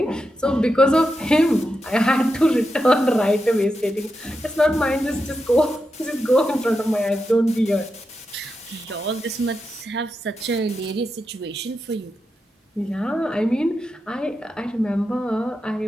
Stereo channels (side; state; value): both; normal; correlation 0.88